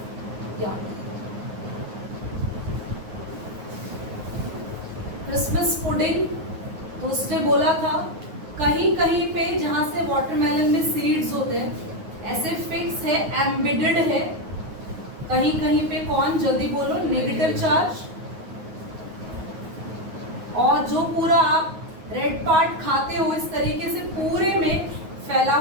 क्रिसमस पुडिंग। तो उसने बोला था कहीं कहीं पे जहां से वाटरमेलन में सीड्स होते हैं ऐसे फिक्स है, एम्बेडेड है, कहीं कहीं पे कौन, जल्दी बोलो, नेगेटिव चार्ज, और जो पूरा आप रेड पार्ट खाते हो इस तरीके से पूरे में फैला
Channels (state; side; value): late; left; 9.5 ms